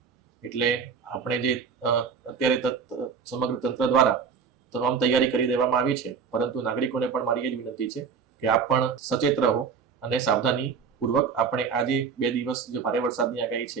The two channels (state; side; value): quieter; left; 6.1 dB